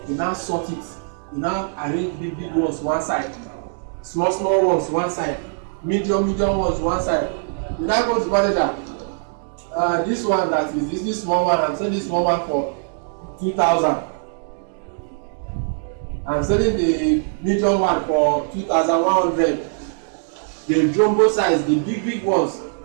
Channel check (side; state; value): left; silent; digital silence